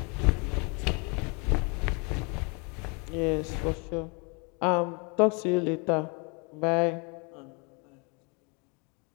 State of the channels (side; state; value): right; quieter; 32.6 dB